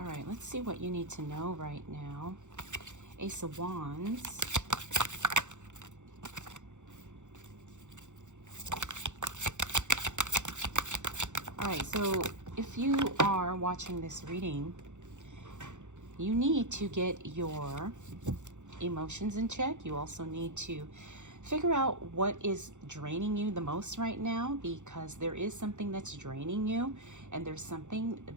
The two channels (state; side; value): late; left; 0.85 ms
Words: right, let's see what you need to know right now. Ace of Wands. All right, so if you are watching this reading, you need to get your emotions in check. You also need to figure out what is draining you the most right now, because there is something that's draining you, and there's something